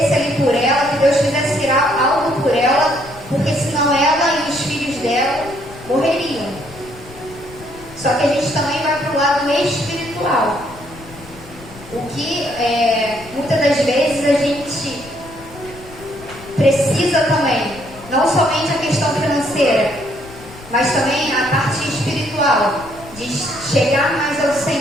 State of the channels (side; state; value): left; noise; rumble, 19 dB below the sound